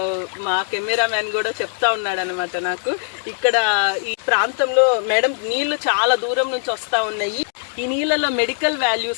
మా కెమెరా మ్యాన్ కూడా చెప్తా ఉన్నాడు అనమాట నాకు, ఇక్కడ ఈ ప్రాంతంలో మేడం నీళ్లు చాలా దూరం నుంచి వస్తా ఉన్నాయి, ఈ నీళ్ళలో మెడికల్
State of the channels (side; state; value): right; silent; digital silence